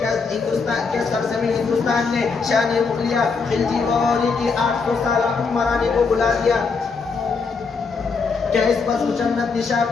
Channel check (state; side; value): quieter; right; 4.9 dB